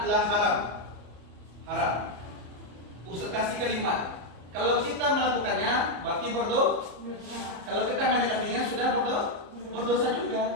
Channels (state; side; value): late; left; 34 ms